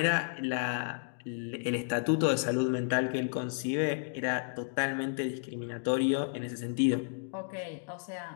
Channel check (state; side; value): silent; right; digital silence